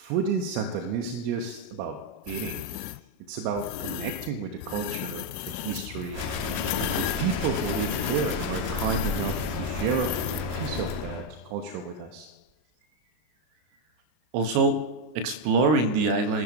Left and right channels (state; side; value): late; left; 32 ms